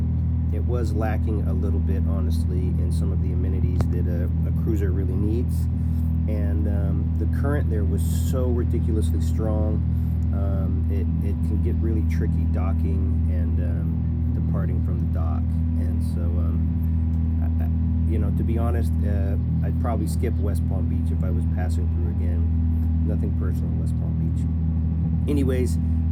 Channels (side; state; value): both; identical; correlation 1.00